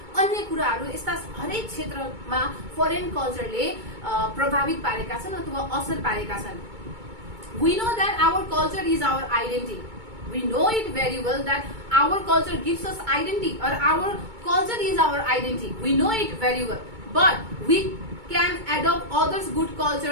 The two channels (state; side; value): late; left; 2.2 ms